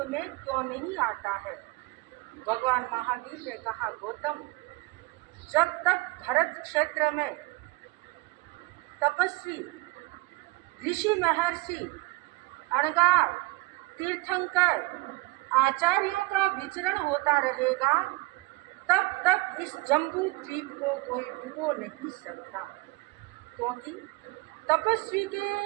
में क्यों नहीं आता है? भगवान महावीर ने कहा, गौतम, जब तक भरत क्षेत्र में तपस्वी ऋषि महर्षि अणगार तीर्थंकर आचार्यों का विचरण होता रहेगा, तब तक इस जम्बू द्वीप को कोई डुबो नहीं सकता। क्योंकि तपस्वी के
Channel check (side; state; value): left; quieter; 23.0 dB